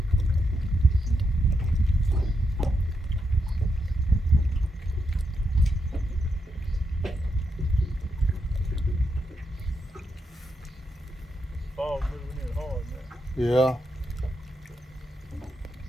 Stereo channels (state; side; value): normal; both; correlation 0.83